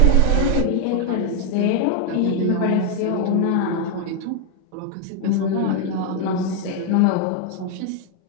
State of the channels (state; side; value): different; both; correlation 0.00